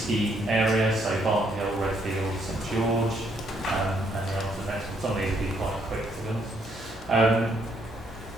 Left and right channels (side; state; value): both; normal; correlation 0.71